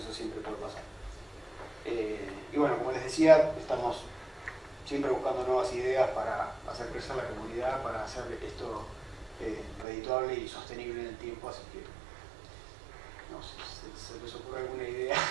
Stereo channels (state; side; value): drops out; left; at 9.9 s